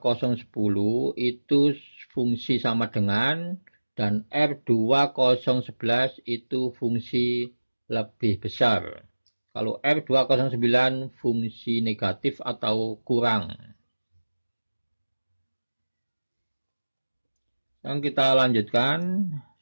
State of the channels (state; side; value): inverted; both; correlation -1.00